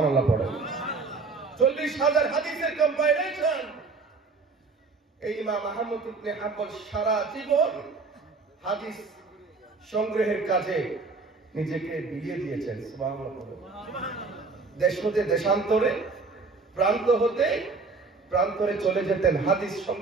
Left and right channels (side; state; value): left; quieter; 4.1 dB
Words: পড়েন। 40,000 হাদিসের কম্পাইলেশন। এই ইমাম আহমদ ইবনে হাম্বল সারা জীবন হাদিস সংগ্রহের কাজে নিজেকে বিলিয়ে দিয়েছেন। সুবহানাল্লাহ। দেশ হতে দেশান্তরে, প্রান্ত হতে প্রান্তরে চলে যেতেন হাদিস